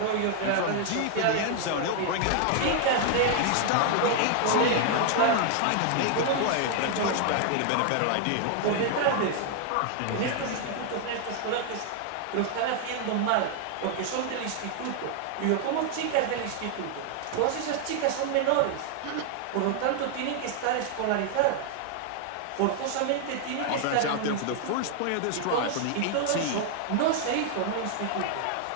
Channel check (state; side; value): different; both; correlation 0.00